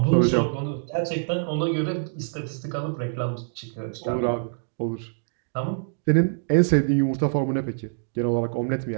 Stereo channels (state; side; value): silent; left; digital silence